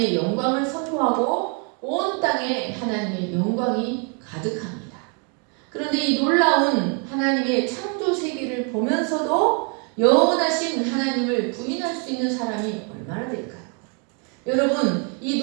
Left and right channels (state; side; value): quieter; left; 37.8 dB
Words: 영광을 선포하고 온 땅에 하나님의 영광이 가득합니다. 그런데 이 놀라운 하나님의 창조 세계를 보면서도 영원하신 하나님을 부인할 수 있는 사람이 얼마나 될까요? 여러분, 이